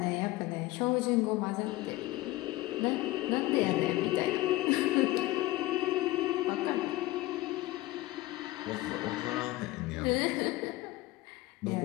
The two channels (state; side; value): quieter; right; 18.3 dB